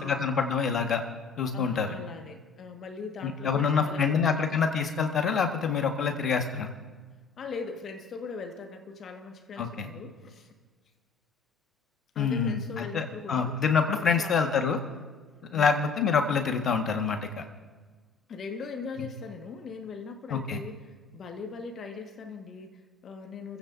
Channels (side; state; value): right; quieter; 5.2 dB